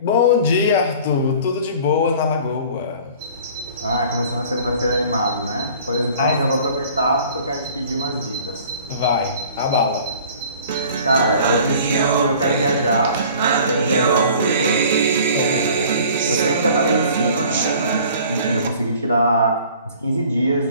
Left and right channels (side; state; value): both; inverted; correlation -0.48